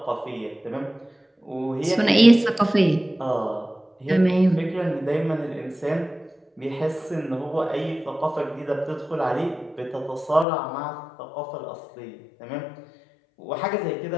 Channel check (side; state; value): right; drops out; at 10.5 s